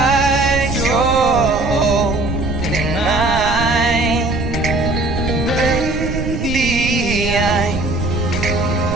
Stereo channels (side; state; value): right; noise; rumble, 5 dB below the sound